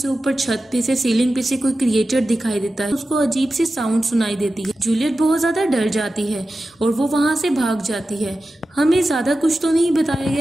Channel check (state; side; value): normal; both; correlation 0.93